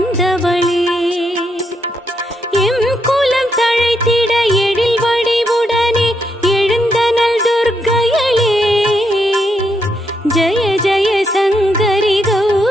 எம் குலம் தழைத்திட எழில் வடிவுடனே எழுந்தனள் துர்க்கையளே. ஜய ஜய சங்கரி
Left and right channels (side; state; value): both; normal; correlation 0.79